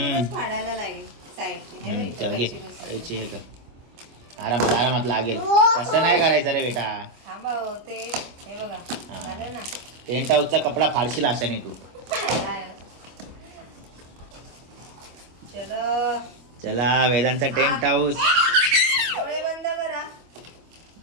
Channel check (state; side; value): late; left; 25 ms